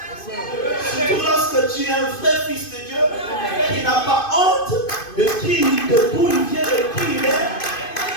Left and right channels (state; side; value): late; right; 2.5 ms